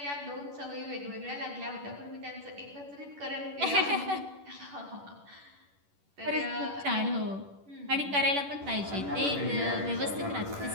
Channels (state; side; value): late; left; 10 ms